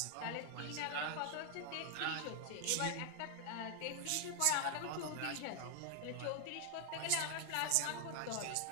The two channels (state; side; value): different; both; correlation 0.00